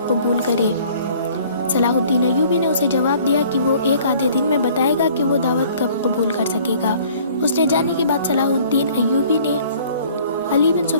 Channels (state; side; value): inverted; both; correlation -0.54